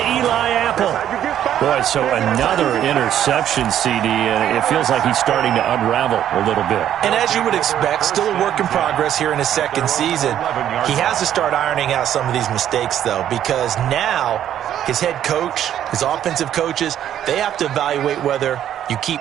Eli Apple. Boy, so another interception, CD, and it feels like he's starting to unravel a little bit. And as you would expect, still a work in progress here in his 2nd season. He has to start ironing out some of these mistakes, though, because now his head coach, his offensive coaches, they have to evaluate whether you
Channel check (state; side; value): quieter; left; 10.7 dB